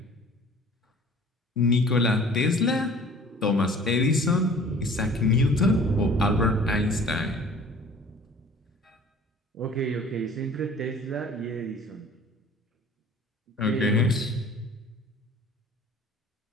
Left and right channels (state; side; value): normal; both; correlation 0.48